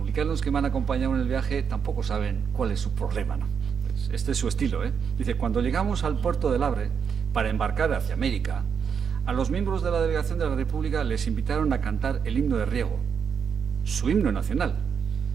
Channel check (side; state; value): left; quieter; 6.9 dB